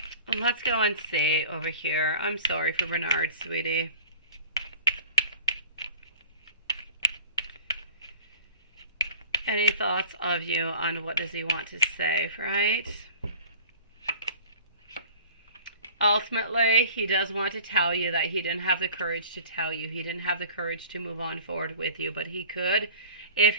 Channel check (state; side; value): inverted; both; correlation -0.45